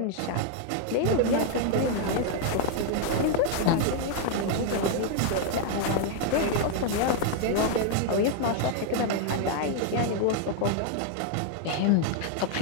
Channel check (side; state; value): both; different; correlation 0.00